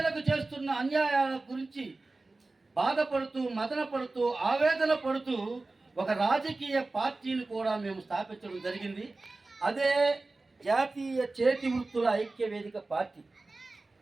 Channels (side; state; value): left; quieter; 3.3 dB